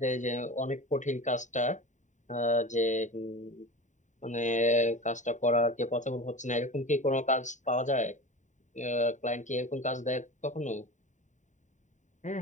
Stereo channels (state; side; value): late; right; 0.36 ms